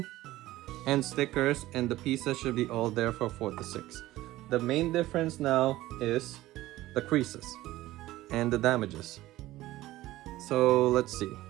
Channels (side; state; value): left; quieter; 16.4 dB